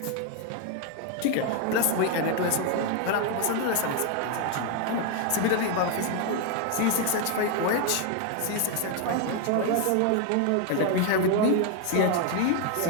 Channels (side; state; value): both; different; correlation 0.00